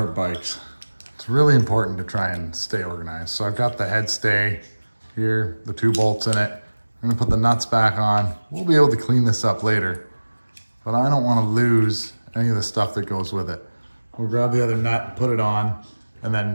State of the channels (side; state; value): both; inverted; correlation -1.00